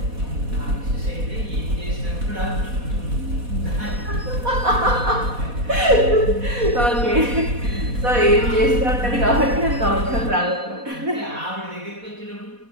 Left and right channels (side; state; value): left; late; 4.1 ms